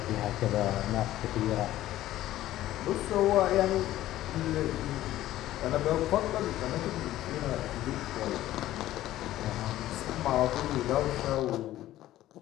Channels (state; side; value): quieter; right; 14.4 dB